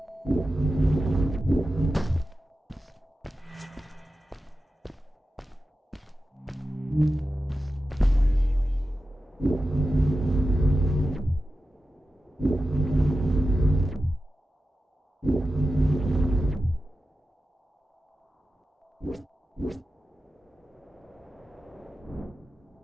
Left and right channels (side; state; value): both; normal; correlation 0.92